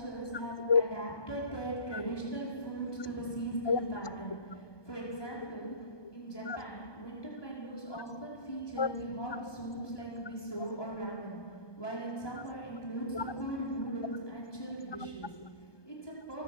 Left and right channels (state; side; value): late; right; 1.2 ms